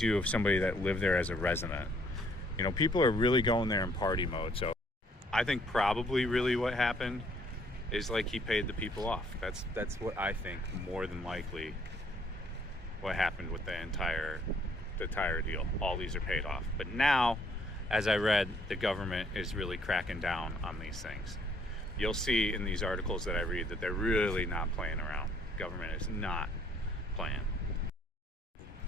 if somebody that lived there as a resident. People are really going there in party mode. So I think probably really what happened is like he paid the people off. That's what I think more than likely what happened with the entire deal. All these are paid off. But now, as I read, the government is really cracking down on these things. You'll see in these articles that I read that they're really not playing around. Government is not playing.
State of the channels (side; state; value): both; normal; correlation 0.64